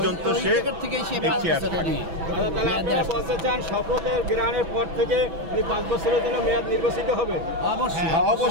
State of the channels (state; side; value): late; left; 6.1 ms